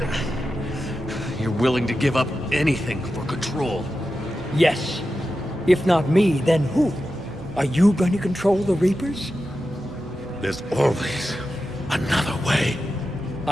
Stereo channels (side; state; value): both; normal; correlation 0.91